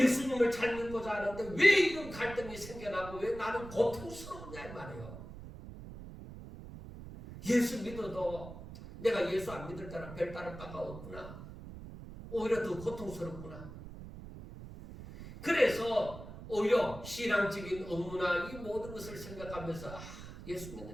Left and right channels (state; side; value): noise; right; rumble, 13 dB below the sound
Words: 잘 믿고자 하는데 왜 이런 갈등이 생겨나고 왜 나는 고통스러우냐 이 말이에요. 예수 믿어도 내가 예수 안 믿을 때랑 별 다를 바가 없구나. 오히려 더 고통스럽구나. 그래서 오히려 신앙적인 업무나 이 모든 것을 생각하면서 예수